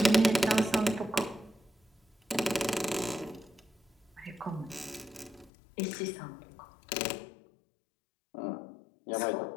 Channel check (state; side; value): drops out; right; at 5.5 s